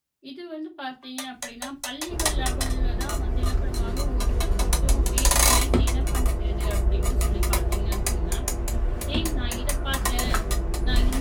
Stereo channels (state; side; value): identical; both; correlation 1.00